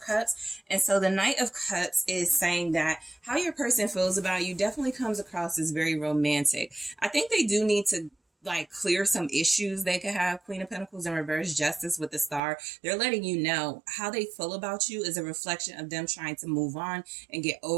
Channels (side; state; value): left; drops out; at 12.4 s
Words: And so the Knight of Cups is saying that how your person feels about you definitely comes across as very romantic. I think they do need to like clear some issues they could have. Queen of Pentacles in reverse, Justice with the Star. They're letting you know how they feel about you is a reflection of them trying to move on and get